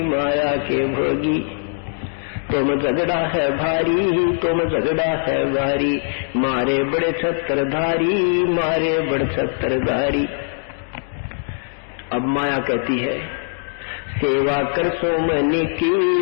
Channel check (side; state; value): right; silent; 60 dB below the other